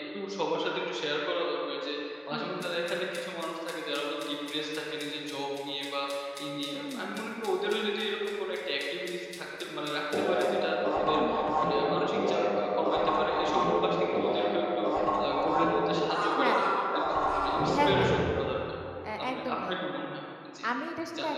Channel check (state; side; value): identical; both; correlation 1.00